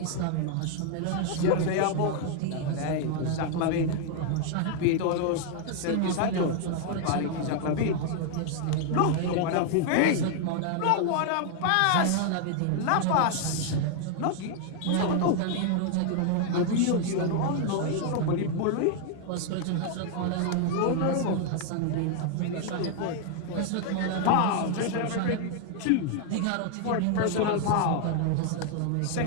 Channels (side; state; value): both; different; correlation 0.00